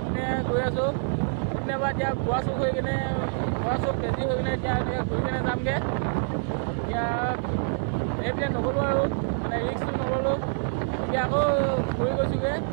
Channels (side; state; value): left; silent; digital silence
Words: গৈ আছোঁ কেতিয়াবা এতিয়া গোৱা চুক হৈ কিনে বেজি হৈ কিনে এতিয়া ঘূৰি কিনে যামগৈ। এতিয়া এইপিনে নগ'লোঁ আৰু, মানে ৰিক্সটো নগ'লোঁ। এতিয়া আকৌ ঘূৰি গৈছোঁগৈ